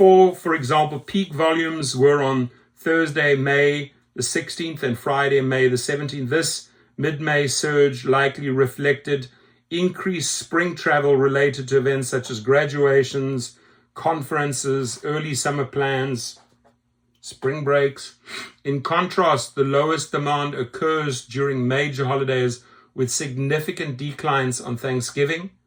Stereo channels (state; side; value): identical; both; correlation 1.00